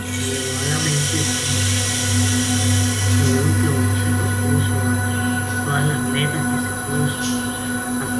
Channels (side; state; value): both; identical; correlation 1.00